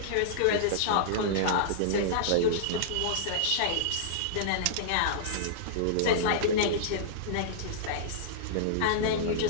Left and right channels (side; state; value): both; different; correlation -0.02